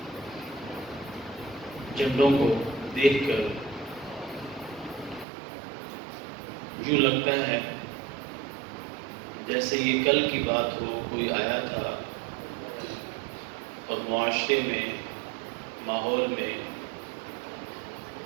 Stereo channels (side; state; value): left; drops out; at 5.2 s